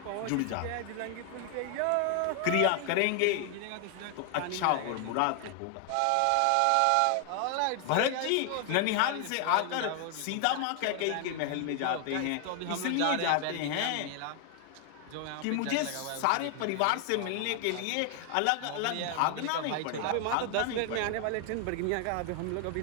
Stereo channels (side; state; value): both; different; correlation 0.00